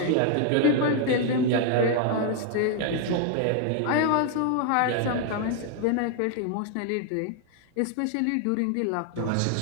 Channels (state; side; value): different; both; correlation 0.00